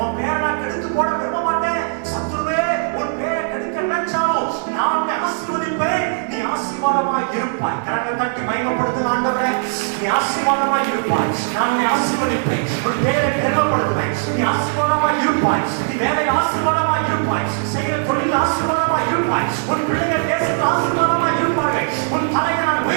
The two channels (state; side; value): silent; left; digital silence